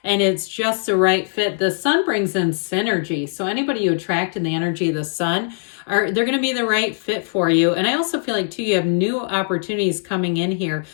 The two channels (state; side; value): silent; right; digital silence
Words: and it's just the right fit. The Sun brings in synergy. So anybody you attract in the energy of the Sun, they're going to be the right fit for you. And I also feel like too, you have new opportunities coming in here.